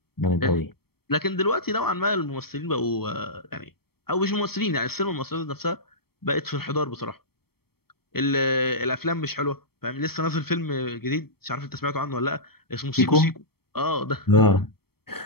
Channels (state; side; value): late; right; 0.95 ms